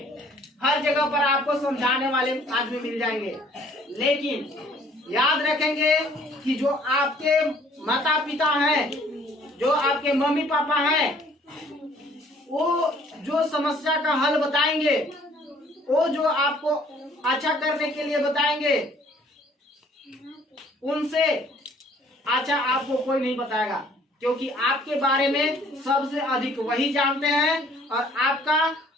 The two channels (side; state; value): both; normal; correlation 0.58